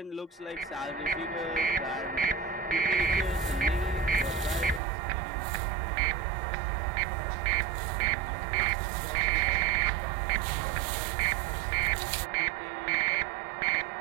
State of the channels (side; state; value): left; drops out; at 4.8 s